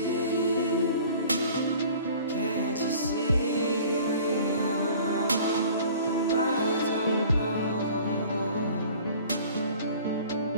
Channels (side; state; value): both; inverted; correlation -0.47